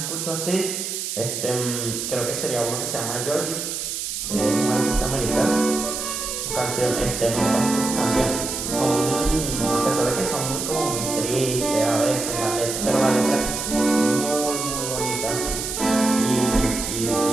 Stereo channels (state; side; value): noise; right; hiss, 4 dB below the sound